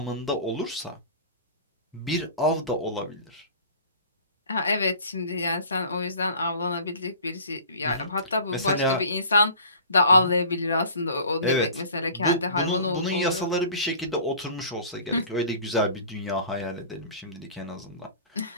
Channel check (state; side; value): inverted; both; correlation -0.43